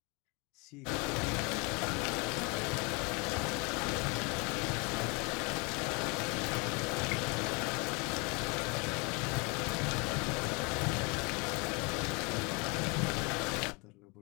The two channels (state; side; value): quieter; right; 30.3 dB